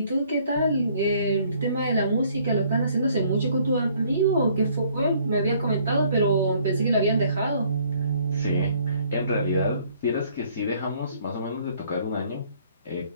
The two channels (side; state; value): both; inverted; correlation -0.62